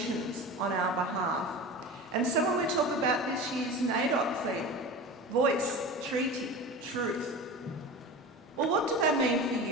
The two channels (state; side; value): normal; both; correlation 0.31